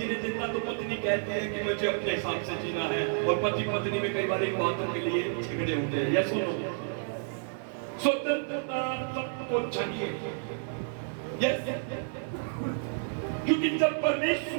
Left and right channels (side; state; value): left; silent; digital silence